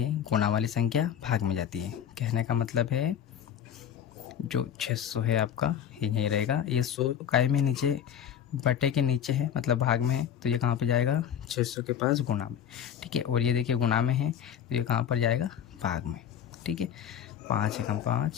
गुणा वाली संख्या भाग में जाती है। कहने का मतलब है जो 600 है आपका यही रहेगा। ये 100 काय में नीचे बटे के नीचे है मतलब भाग में है, तो ये कहाँ पे जाएगा 600 के पास गुणा में, ठीक है। और ये देखिए गुणा में है तो ये कहाँ पर जाएगा भाग में, ठीक है। 5 एकम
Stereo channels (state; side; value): quieter; right; 9.3 dB